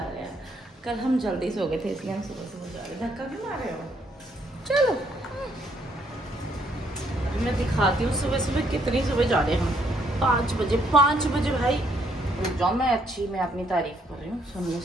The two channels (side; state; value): both; normal; correlation 0.70